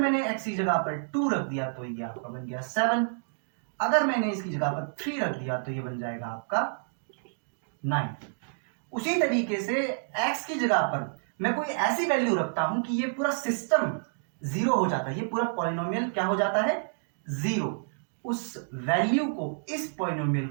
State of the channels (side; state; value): left; silent; digital silence